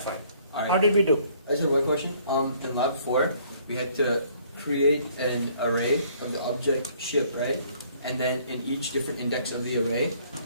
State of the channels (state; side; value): inverted; both; correlation -0.61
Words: Alright. How did we do? I just have one question. In lab 4, we had to create an array of the object ship, right? And then in each different index of the array,